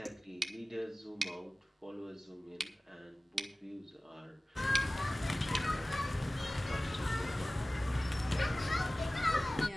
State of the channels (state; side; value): normal; both; correlation 0.97